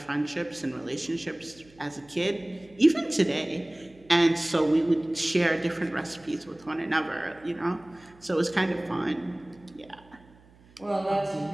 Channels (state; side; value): noise; right; hum, 27 dB below the sound